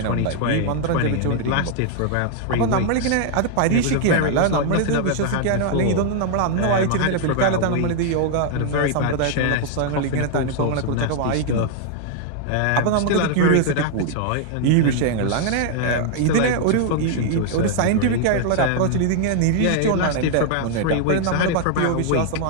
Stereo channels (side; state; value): both; different; correlation 0.00